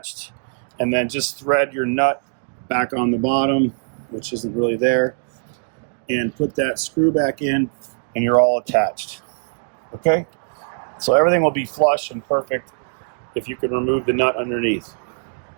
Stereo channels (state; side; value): silent; left; digital silence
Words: and then just thread your nut back on the bottom, which isn't really there, and put that screw back in, and you're all attached. Okay? So everything will be flush and perfect if you can remove the nut underneath.